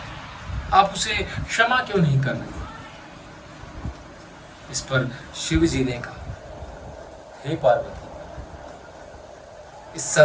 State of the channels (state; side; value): identical; both; correlation 1.00